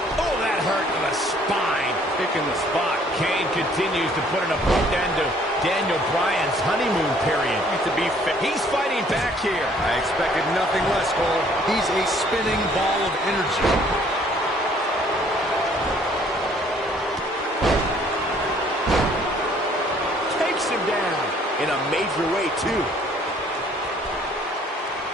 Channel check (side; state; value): both; normal; correlation 0.60